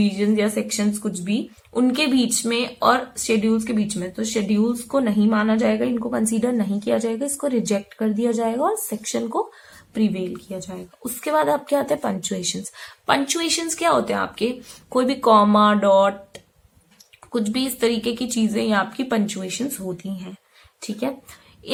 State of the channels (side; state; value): both; identical; correlation 1.00